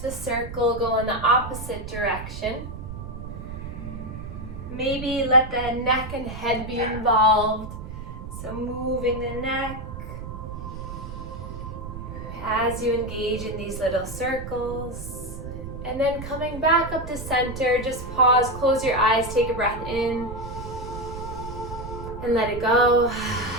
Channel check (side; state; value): right; noise; rumble, 9 dB below the sound